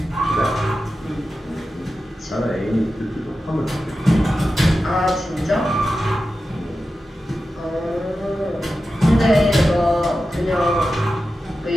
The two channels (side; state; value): both; normal; correlation 0.92